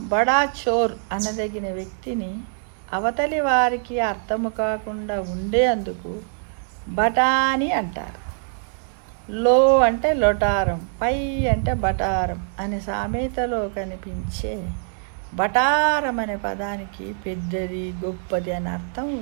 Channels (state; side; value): silent; left; digital silence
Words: బడా చోర్ అనదగిన వ్యక్తిని అవతలి వారికి అర్థము కాకుండా ఉండేందుకు బఠానీ అంటారు. లో అంటే లొటారం, పై అంటే బటారం అనే సామెతలో కనిపించే బటారం అనే పదానికి పెద్దది, గొప్పది అని అర్థం